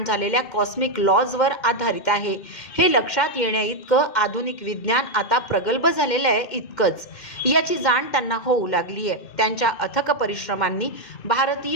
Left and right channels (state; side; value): late; right; 2.1 ms